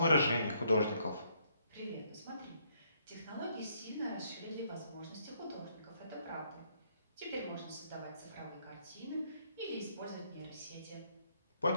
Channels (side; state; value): both; inverted; correlation -0.69